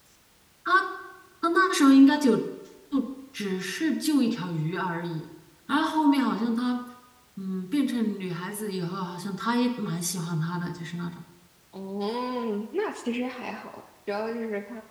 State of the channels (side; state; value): both; identical; correlation 1.00